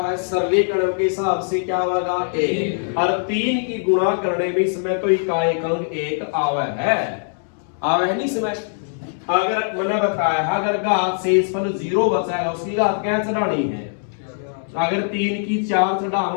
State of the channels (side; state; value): right; silent; digital silence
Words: सरलीकरण के हिसाब से क्या होगा 1, और 3 की गुणा करने में इसमें तो इकाई अंक 1 आवे है नहीं इसमें। अगर मैंने बताया है अगर घात शेषफल 0 बचाएगा उसकी घात क्या चढ़ानी है, अगर 3 की 4